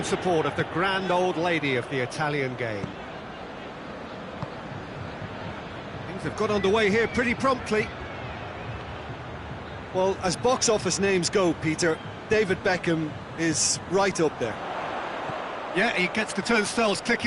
support of the grand old lady of the Italian game. Things have got underway here pretty promptly. Well, as box office names go, Peter, David Beckham is right up there. Yeah, he gets the turnstiles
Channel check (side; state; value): both; identical; correlation 1.00